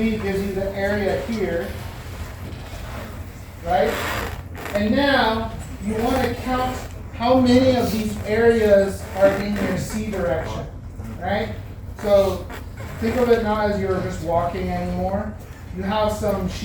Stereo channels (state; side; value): identical; both; correlation 1.00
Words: gives you the area here. Right? And now you want to count how many of these areas are in your C direction. Right? So think of it not as you're just walking anymore. You have some